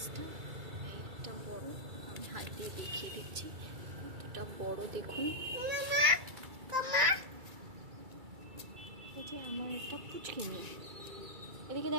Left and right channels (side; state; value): left; late; 2.3 ms